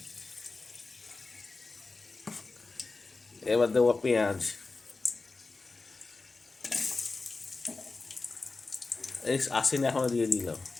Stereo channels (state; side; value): quieter; right; 3.7 dB